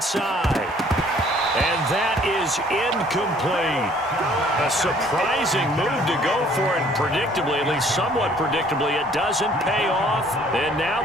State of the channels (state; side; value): normal; both; correlation 0.58